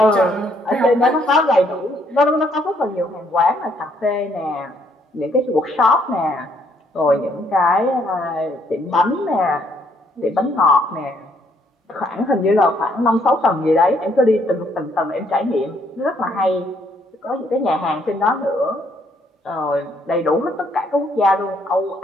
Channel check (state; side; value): normal; both; correlation 0.69